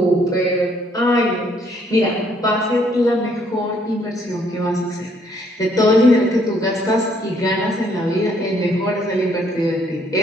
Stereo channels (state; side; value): normal; both; correlation 0.67